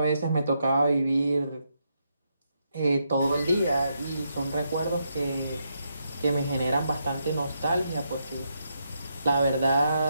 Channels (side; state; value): both; inverted; correlation -0.80